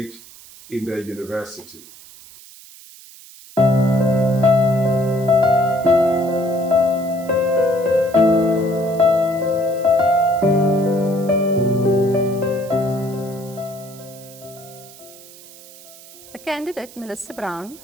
in the university. The candidate, Melissa Brown,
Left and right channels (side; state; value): right; noise; hiss, 20 dB below the sound